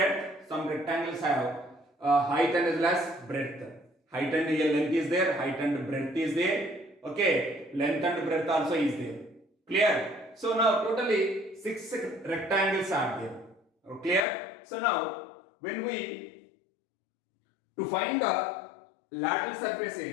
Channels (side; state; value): right; drops out; at 14.2 s